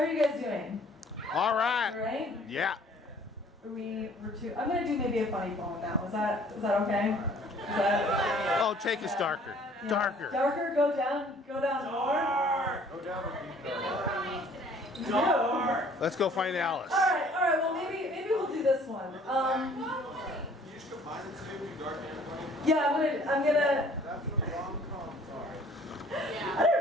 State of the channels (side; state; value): both; normal; correlation 0.55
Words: are you guys doing? All right. All right? Yeah. I'm gonna do maybe a funny poem now. Is that okay? Is that? Oh, take us darker. Yeah. Darker. Darker. Go down more. Go down. Dark. Let's go find Alice. All right. Well, maybe we'll do this one. You just combine the two, do dark and funny? Yeah, I'm gonna. That's what rom-coms are. I